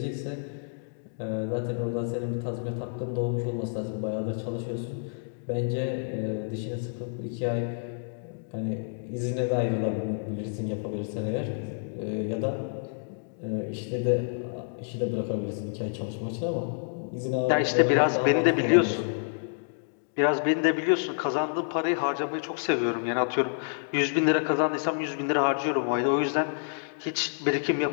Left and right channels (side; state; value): right; silent; digital silence